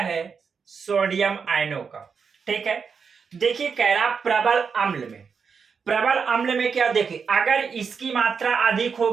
सोडियम आयनों का, ठीक है। देखिए कह रहा प्रबल अम्ल में क्या, देखिए अगर इसकी मात्रा अधिक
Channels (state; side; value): quieter; left; 5.9 dB